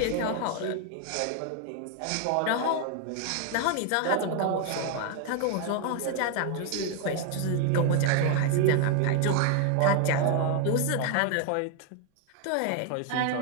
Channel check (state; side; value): different; both; correlation 0.01